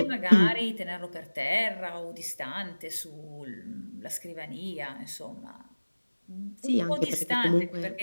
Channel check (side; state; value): both; inverted; correlation -1.00